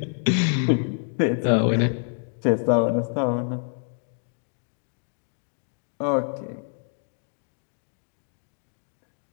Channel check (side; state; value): right; silent; digital silence